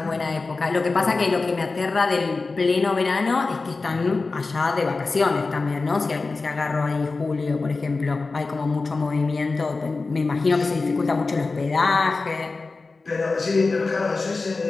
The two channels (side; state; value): right; quieter; 3.8 dB